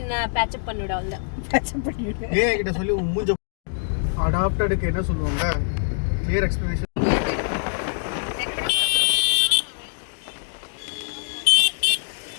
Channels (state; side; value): silent; right; digital silence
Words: பேட்சப் பண்ணிவிட அவ்வளோ பேட்சப் பண்ணிவிடு. ஏன் கிட்ட சொல்லி மூஞ்ச அடாப்டடுக்கு என்ன சொல்லுவாங்க, கிளியர் எக்ஸ்பிளனேஷன்.